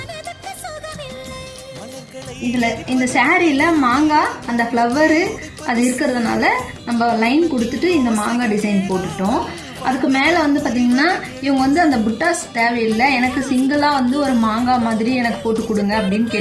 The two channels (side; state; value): both; identical; correlation 1.00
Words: இதில் இந்த சாரியில் மாங்காய் அந்த ஃப்ளவரு அது இருக்கிறதுனால நம்ம லைன் கொடுத்துட்டு இந்த மாங்காய் டிசைன் போட்டுட்டோம். அதுக்கு மேலே வந்து பார்த்திங்கன்னா இவங்க வந்து அந்த புட்டாஸ் தேவையில்லை, எனக்கு சிங்கிளாக வந்து ஒரு மாங்காய் மாதிரி எனக்கு போட்டு கொடுங்க அப்படின்னு